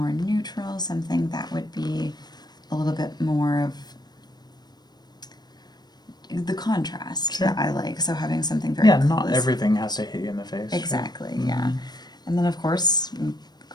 neutral, something that would be a little bit more of the contrast that I like. So having something very not everything has to hit you in the face. Exactly, yeah. And then of course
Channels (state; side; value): late; right; 0.20 ms